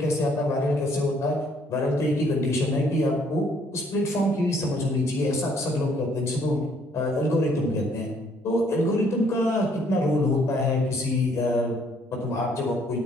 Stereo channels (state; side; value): normal; both; correlation 0.65